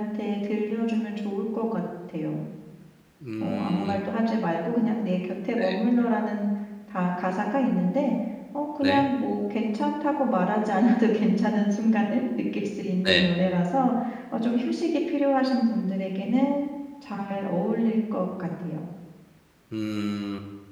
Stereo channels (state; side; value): identical; both; correlation 1.00